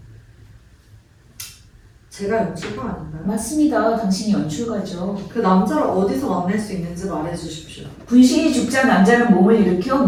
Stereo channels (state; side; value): identical; both; correlation 1.00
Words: 제가 연출가 아닌가요? 맞습니다. 당신이 연출가죠. 그 남자를 어디서 만날 수 있는지 말해주십시오. 분신이 죽자 남자는 몸을 일으켜